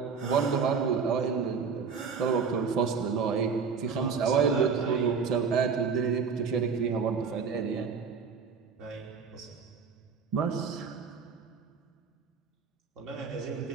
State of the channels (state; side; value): quieter; left; 5.8 dB